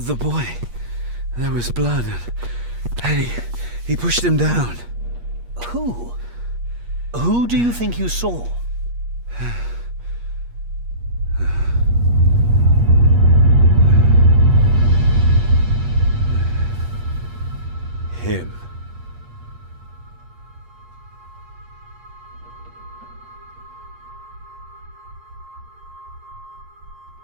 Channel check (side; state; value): left; late; 8.4 ms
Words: boy. There was blood and he pushed him down. Who? Who do you think you saw? Him.